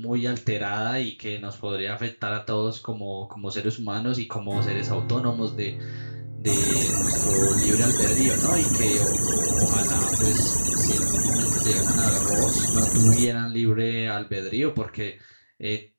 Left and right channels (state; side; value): inverted; both; correlation -1.00